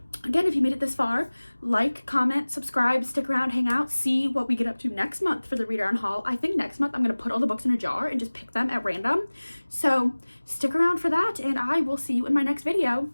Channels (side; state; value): both; inverted; correlation -1.00